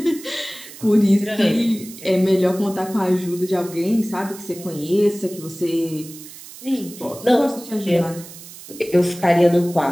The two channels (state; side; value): noise; right; hiss, 16 dB below the sound